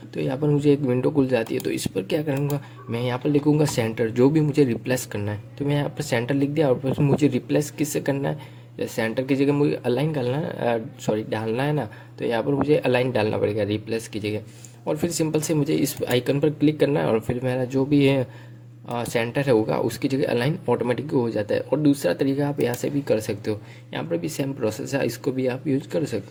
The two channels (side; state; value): both; identical; correlation 1.00